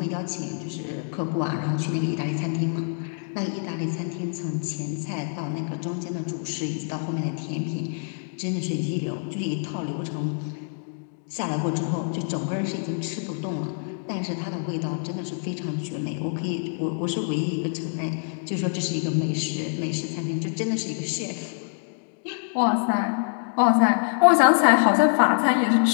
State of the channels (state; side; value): silent; right; digital silence